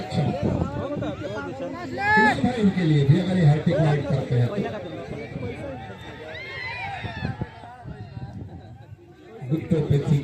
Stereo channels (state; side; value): identical; both; correlation 1.00